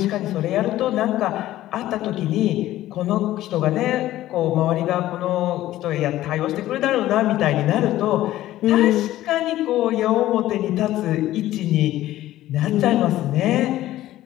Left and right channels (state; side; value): quieter; right; 14.6 dB